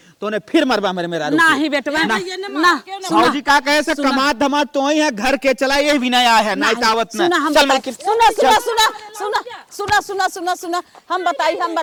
तोने फिर मरबा मेरा नहीं बेटवा ना। ना साहू जी का कहे से कमात धमात तो ही है घर के चला ये भी नया है ना तावत ना सुना हम चल बताई मलकिन सुना हम बताई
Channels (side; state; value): both; identical; correlation 1.00